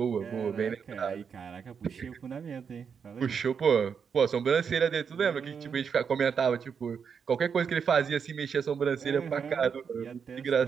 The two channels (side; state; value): left; quieter; 6.6 dB